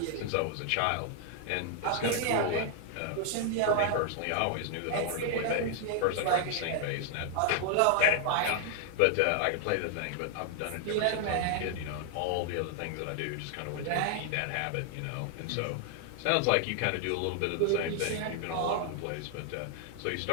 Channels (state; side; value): different; both; correlation 0.00